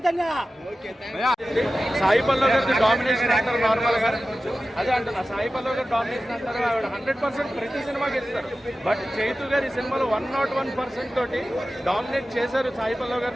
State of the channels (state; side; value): normal; both; correlation 0.95